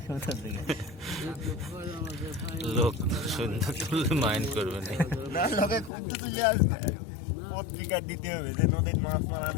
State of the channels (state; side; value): drops out; right; at 5.9 s